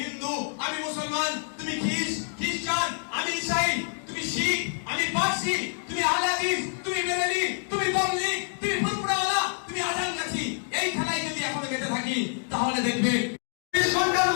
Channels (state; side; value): silent; right; 59 dB below the other